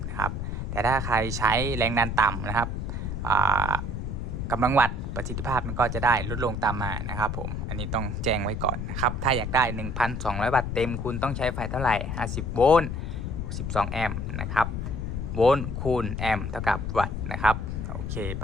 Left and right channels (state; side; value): noise; left; rumble, 3 dB below the sound